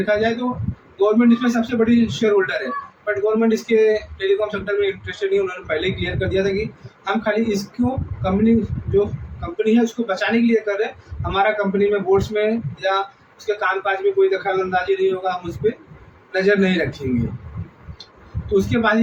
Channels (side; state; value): both; identical; correlation 1.00